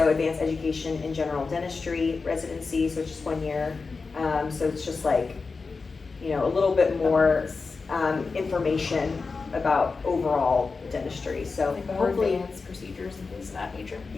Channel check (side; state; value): right; quieter; 4.4 dB